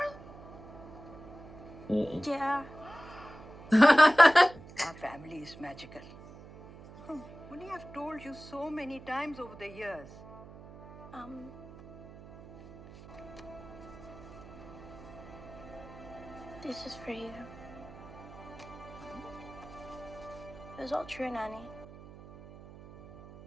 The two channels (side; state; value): right; noise; hum, 17 dB below the sound